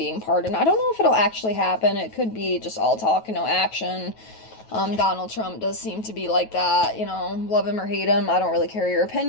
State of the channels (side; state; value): right; late; 9.2 ms